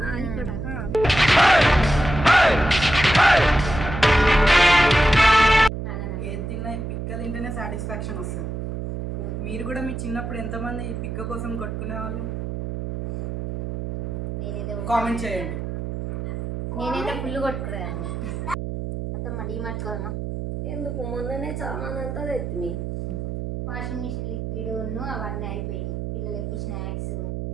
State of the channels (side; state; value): right; noise; hum, 5 dB below the sound